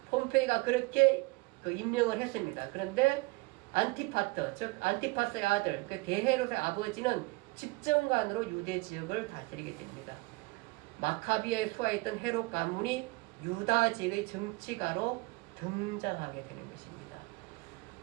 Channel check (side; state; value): left; quieter; 24.6 dB